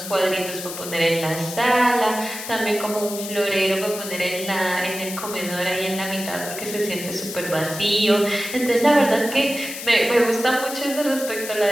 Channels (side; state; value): left; noise; hiss, 9 dB below the sound